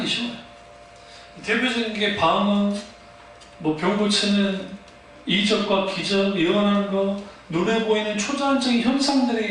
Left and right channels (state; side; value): identical; both; correlation 1.00